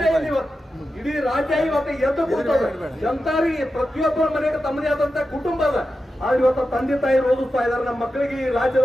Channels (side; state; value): both; normal; correlation 0.91